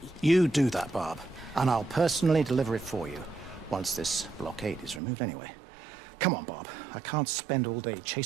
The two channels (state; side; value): drops out; left; at 5.0 s